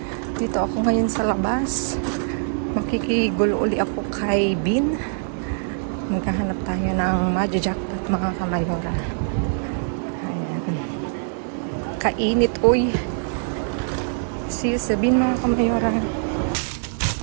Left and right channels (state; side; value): silent; left; digital silence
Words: Dito ako ngayon sa labas. Makikigulo uli ako kay Bin. Maghahanap tayo ng madja-jackpot mga kamayora. Ayan. Kainit, uy. See you sa Bin mga kamayora.